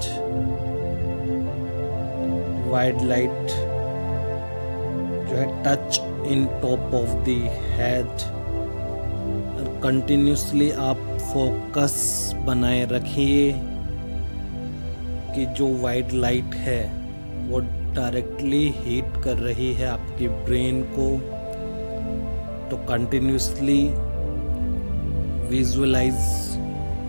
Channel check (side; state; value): both; inverted; correlation -1.00